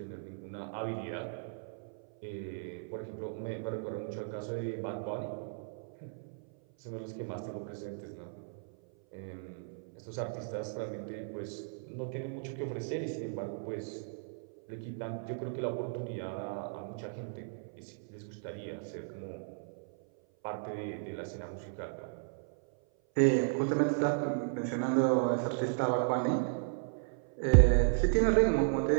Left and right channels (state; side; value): silent; left; 54 dB below the other